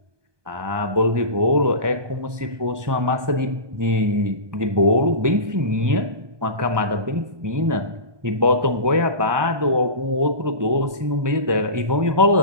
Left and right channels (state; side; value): late; left; 1.2 ms